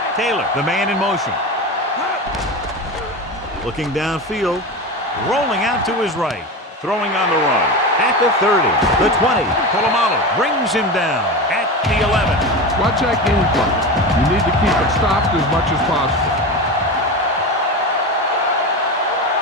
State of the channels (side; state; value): both; normal; correlation 0.24